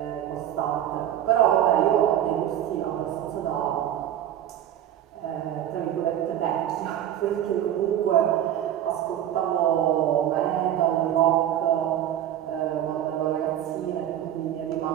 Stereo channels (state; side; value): quieter; left; 11.1 dB